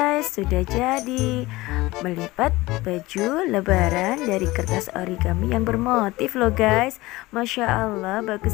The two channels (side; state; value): right; quieter; 19.8 dB